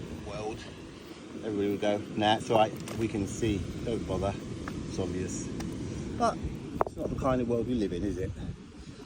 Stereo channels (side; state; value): both; identical; correlation 1.00